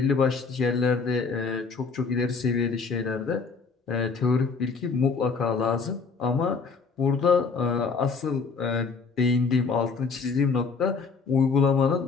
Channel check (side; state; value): right; quieter; 5.0 dB